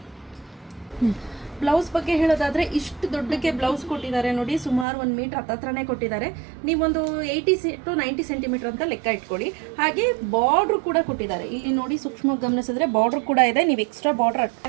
ಬ್ಲೌಸ್ ಬಗ್ಗೆ ಹೇಳೋದಾದ್ರೆ ಇಷ್ಟು ದೊಡ್ಡಕ್ಕೆ ಬ್ಲೌಸ್ ಕೊಟ್ಟಿದ್ದಾರೆ ನೋಡಿ. ಸುಮಾರು 1 ಮೀಟರ್ ಹತ್ರನೇ ಕೊಟ್ಟಿದ್ದಾರೆ. ನೀವೊಂದು 80 to 90 ಸೆಂಟಿಮೀಟರ್ ಅಂತ ಲೆಕ್ಕ ಇಟ್ಕೊಳ್ಳಿ. ಹಾಗೆ ಬಾರ್ಡ್ರು ಕೂಡ ಕೊಟ್ಟಿದ್ದಾರೆ. ಇಲ್ಲಿ ನೋಡಿ ಸೂಕ್ಷ್ಮವಾಗಿ ಗಮನಿಸಿದ್ರೆ ಬಾರ್ಡ್ರ್ ಕೂಡ ಇದೆ. ನೀವು ಎಕ್ಸ್ಟ್ರಾ ಬಾರ್ಡರ್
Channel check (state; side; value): drops out; left; at 4.9 s